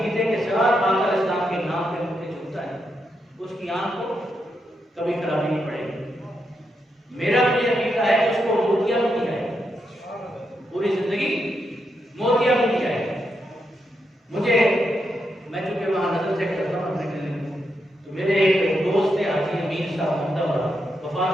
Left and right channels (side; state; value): both; normal; correlation 0.83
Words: کے ساتھ آقا علیہ السلام کے نام پہ مجھے چھوتا ہے، اس کی آنکھ کو کبھی خرابی نہیں پڑے گی۔ میرا بھی عقیدہ ہے کہ اس کو موتیا بھی نہیں آئے گا، پوری زندگی موتیا بھی نہیں آئے گا۔ مجھے، میں چونکہ وہاں نظر چیک کرتا ہوں اپنے کلینک میں، تو میرے ایک دوست ہیں حاجی امین صاحب احمدآباد،